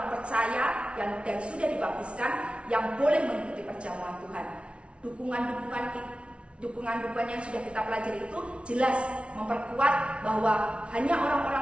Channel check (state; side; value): late; left; 0.060 ms